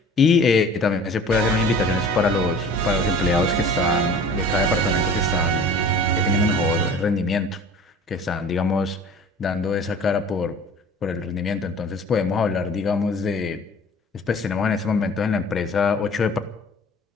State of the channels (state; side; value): normal; both; correlation 0.45